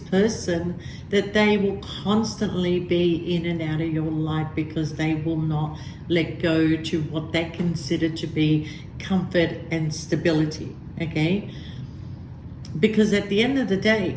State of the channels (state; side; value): identical; both; correlation 1.00